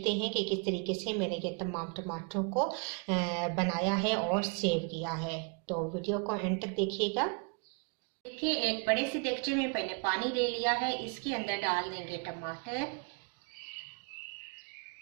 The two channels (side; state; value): left; quieter; 36.1 dB